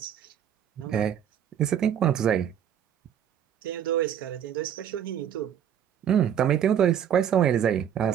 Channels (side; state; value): left; quieter; 9.3 dB